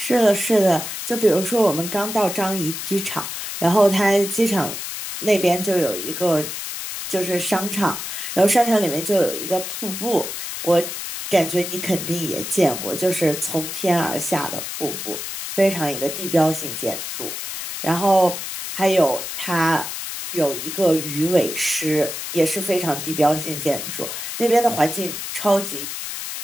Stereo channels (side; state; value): left; noise; hiss, 6 dB below the sound